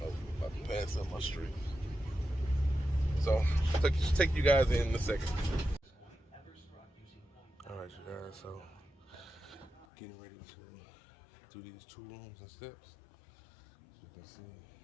about to pass up my street. So take you guys in a second. All right, you guys. So getting ready to do these 2 rooms and steps. As you can see,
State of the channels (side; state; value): right; drops out; at 9.9 s